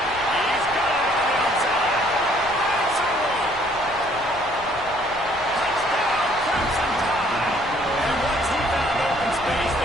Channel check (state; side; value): noise; left; rumble, 19 dB below the sound